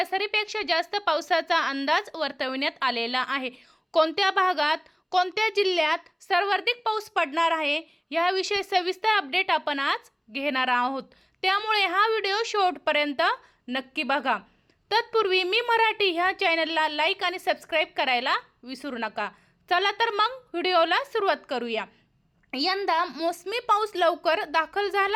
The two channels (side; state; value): both; identical; correlation 1.00